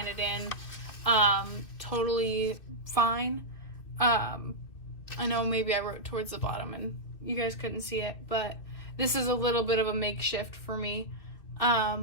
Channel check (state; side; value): late; right; 2.7 ms